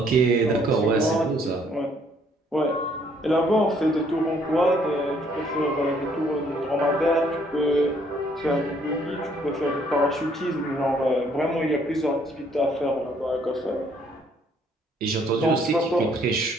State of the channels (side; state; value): both; normal; correlation 0.65